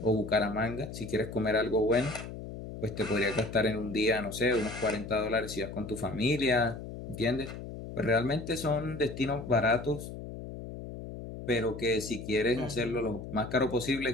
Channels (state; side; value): noise; left; hum, 10 dB below the sound